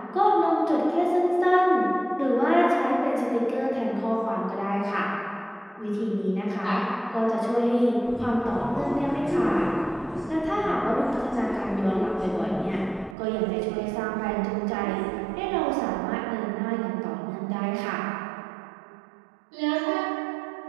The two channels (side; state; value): left; drops out; at 13.2 s